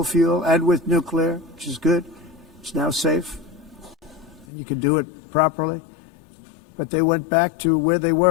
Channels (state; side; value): drops out; right; at 4.5 s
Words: fuel and with nuclear, which is good. It's now safe. You can do it properly. But they went back to where they